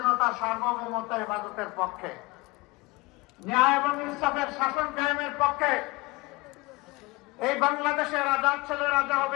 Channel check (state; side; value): quieter; right; 23.5 dB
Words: সার্বভৌমত্ব, হেফাজতের পক্ষে, ন্যায় এবং ইনসাফের শাসন কায়েমের পক্ষে। এই বাংলাদেশের রাজার ছেলে রাজা